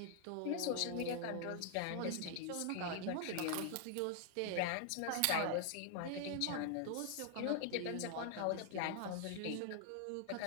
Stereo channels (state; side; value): different; both; correlation 0.00